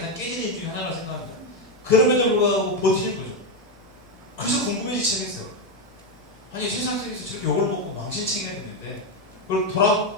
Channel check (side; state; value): both; normal; correlation 0.07